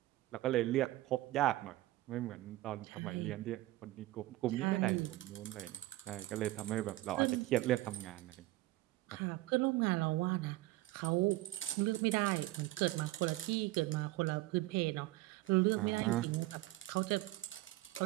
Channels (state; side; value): quieter; left; 17.7 dB